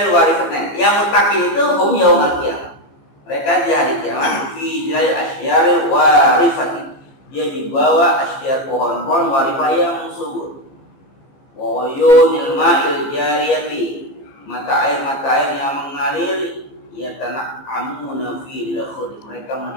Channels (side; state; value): right; late; 15 ms